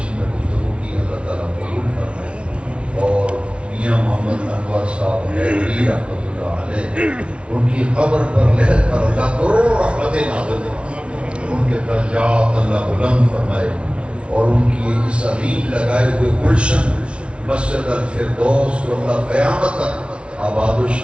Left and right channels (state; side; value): late; left; 0.059 ms